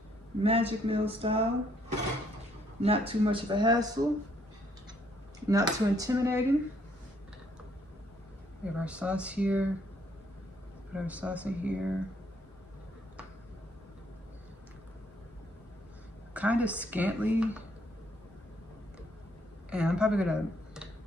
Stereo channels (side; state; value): both; normal; correlation 0.69